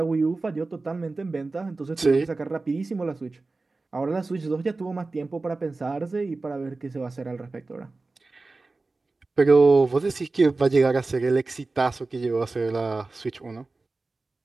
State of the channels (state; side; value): quieter; left; 3.5 dB